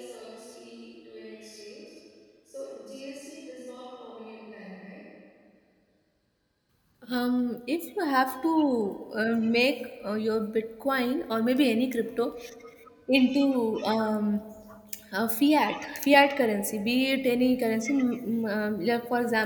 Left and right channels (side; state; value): both; identical; correlation 1.00